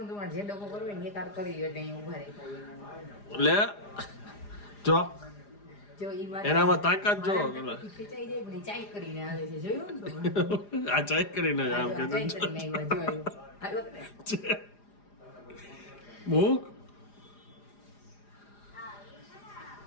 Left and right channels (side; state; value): right; late; 4.9 ms